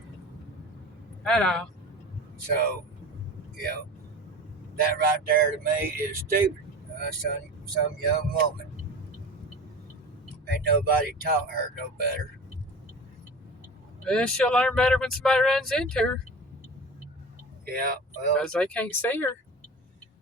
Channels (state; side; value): normal; both; correlation 0.33